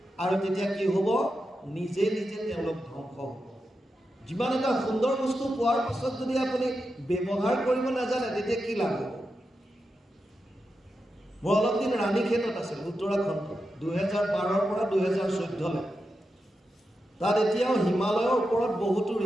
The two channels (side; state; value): both; normal; correlation 0.88